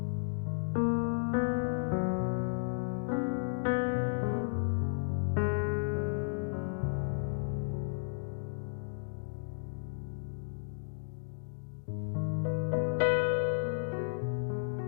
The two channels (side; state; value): right; silent; digital silence